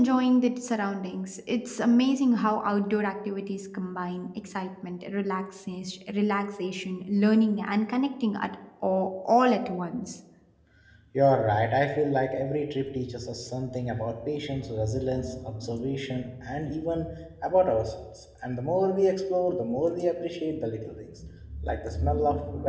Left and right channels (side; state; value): both; identical; correlation 1.00